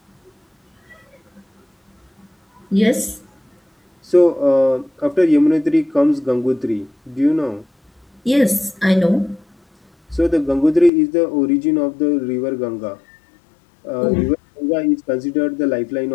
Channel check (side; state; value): right; drops out; at 10.9 s